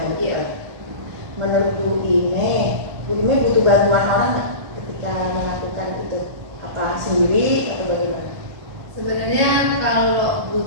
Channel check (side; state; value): left; late; 1.3 ms